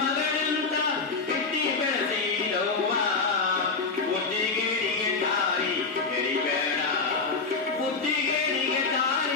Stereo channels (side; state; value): right; quieter; 4.4 dB